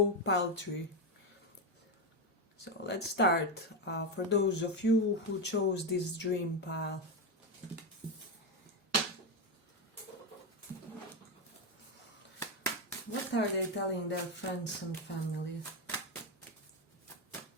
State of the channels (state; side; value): normal; both; correlation 0.09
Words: pile 3. So let's start. For those of you who chose this dream pile. What are they telling their friends and family?